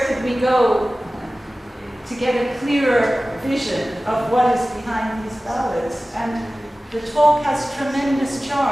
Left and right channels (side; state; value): both; normal; correlation 0.97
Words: could we go to get a clearer vision of what is behind these ballads? And the talk has tremendous